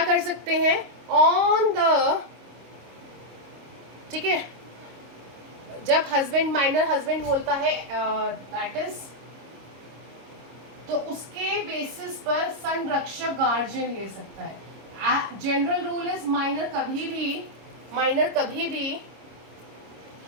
कर सकते हैं, ऑन द, ठीक है, जब माइनर हस्बैंड बोलता है दैट इज, तो उसके बेसिस पर संरक्षक गार्जियन ले सकता है. जनरल रूल इज माइनर कभी भी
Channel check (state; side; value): late; left; 26 ms